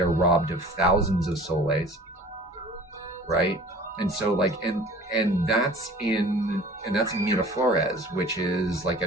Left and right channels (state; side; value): normal; both; correlation 0.46